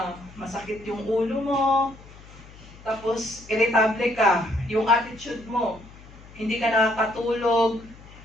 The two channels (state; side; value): noise; left; hum, 20 dB below the sound